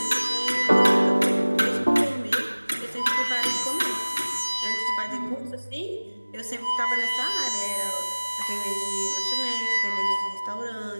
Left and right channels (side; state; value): both; inverted; correlation -1.00